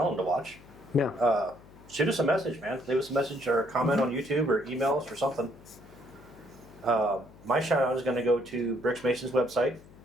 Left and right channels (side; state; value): left; noise; hum, 22 dB below the sound